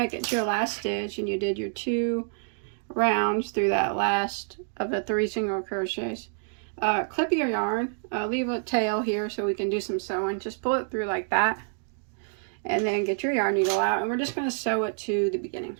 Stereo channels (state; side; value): silent; left; digital silence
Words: it to your last stitch and you did your 2 rounds through that last of the 3 single crochets, clip your yarn, leave a tail here so we can do some sewing. Just pull it through like that, and then get your yarn needle out, and we're just going to sew it to the beginning.